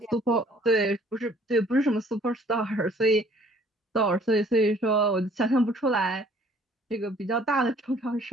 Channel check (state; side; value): normal; both; correlation 0.57